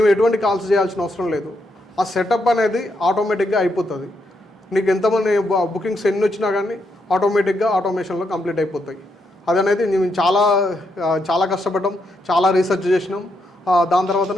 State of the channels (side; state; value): both; normal; correlation 0.79